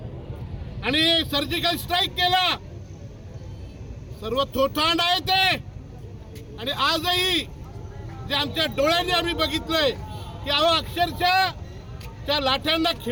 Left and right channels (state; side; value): identical; both; correlation 1.00